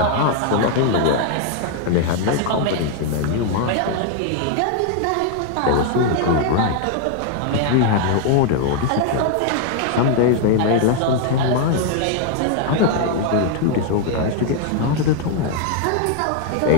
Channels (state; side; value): different; both; correlation 0.00